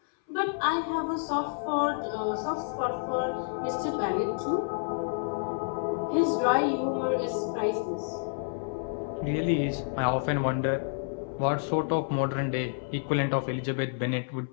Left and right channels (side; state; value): right; silent; 58 dB below the other